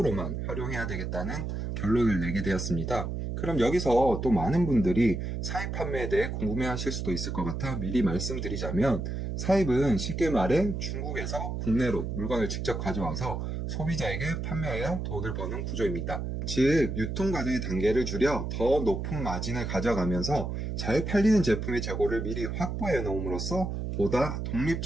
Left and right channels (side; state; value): right; noise; hum, 3 dB below the sound